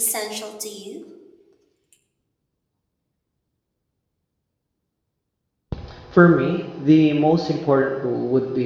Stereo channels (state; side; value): identical; both; correlation 1.00